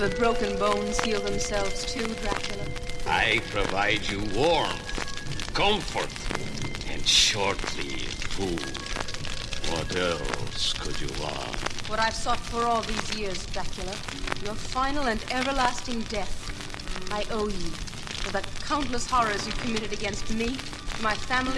broken bones heal themselves too, Dracula? I provide you warmth, comfort, and shortly food. What else could you want? What I've sought for all these years, Dracula. Your final and everlasting death. I owe you for the countless horrors you committed against me, my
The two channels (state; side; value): identical; both; correlation 1.00